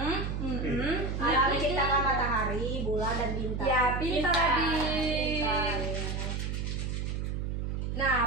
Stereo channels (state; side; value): noise; right; hum, 2 dB below the sound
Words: Allah menciptakan matahari, bulan dan bintang. Ya, pintar adik.